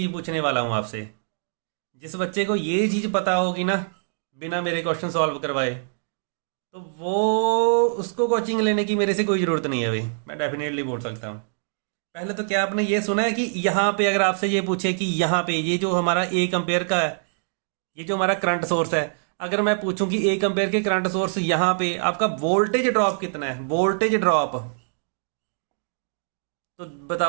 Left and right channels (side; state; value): left; silent; digital silence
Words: पूछने वाला हूँ आपसे। जिस बच्चे को ये चीज़ पता होगी ना बिना मेरे क्वेश्चन सॉल्व करवाए, तो वो उसको कोचिंग लेने की मेरे से कोई ज़रूरत नहीं है भाई, मैं डेफिनेटली बोल सकता हूँ। पहले तो क्या आपने ये सुना है कि यहाँ पे अगर आपसे ये पूछे कि यहाँ पे ये जो हमारा 1 एम्पेयर का है, ये जो हमारा करंट सोर्स है, अगर मैं पूछूं कि 1 एम्पेयर के करंट सोर्स यहाँ पे आपका वोल्टेज ड्रॉप कितना है, वोल्टेज ड्रॉप, तो